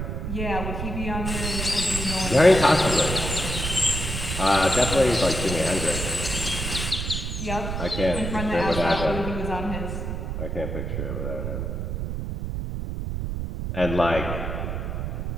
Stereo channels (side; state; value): right; noise; rumble, 3 dB below the sound